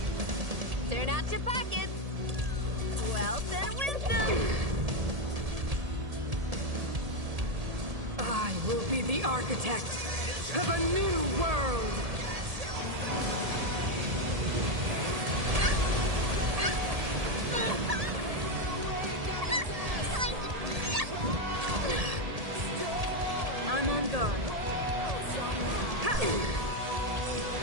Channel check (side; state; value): left; late; 1.7 ms